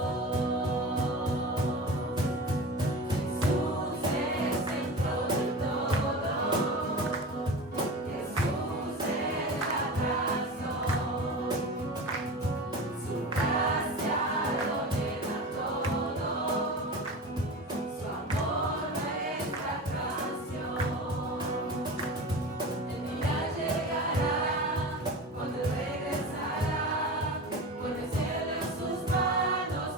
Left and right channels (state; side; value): normal; both; correlation 0.30